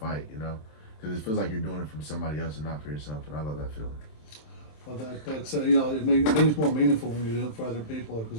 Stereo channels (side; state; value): right; late; 27 ms